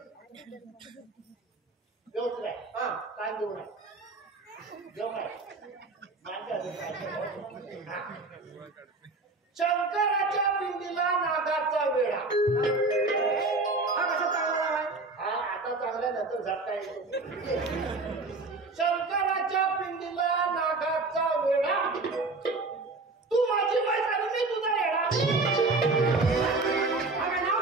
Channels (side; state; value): left; quieter; 3.5 dB